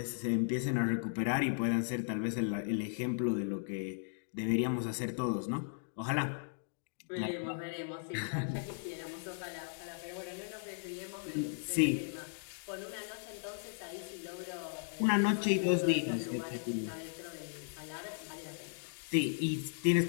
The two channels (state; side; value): silent; right; digital silence